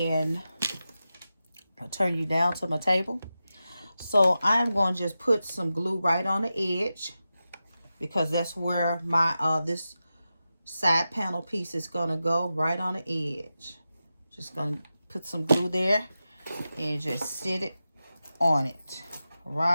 I'll turn you down to my table. So I'm going to just put some glue right on the edge because that's where my this side panel piece is going to go, right on the edge. Just going to put some glue there and just sit it on it,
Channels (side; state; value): both; inverted; correlation -0.92